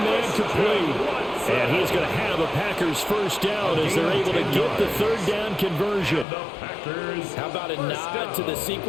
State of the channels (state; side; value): drops out; right; at 6.2 s